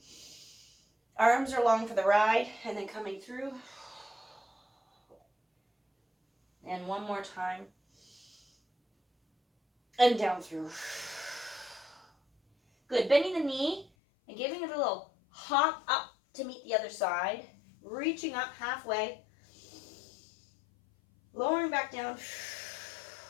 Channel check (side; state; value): right; drops out; at 13.9 s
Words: Arms are long for the ride. And then coming through. And 1 more time. And down through. Good. Bending the knee and giving it a little hop up to meet the other side. Reaching up halfway. Lowering back down.